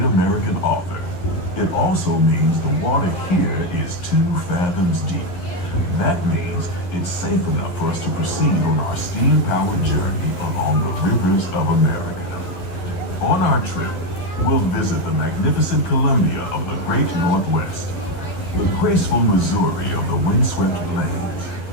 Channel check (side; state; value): right; late; 11 ms